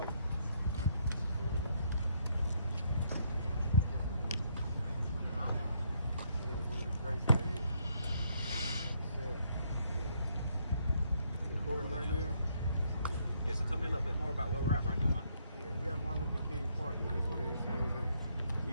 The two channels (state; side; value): inverted; both; correlation -0.72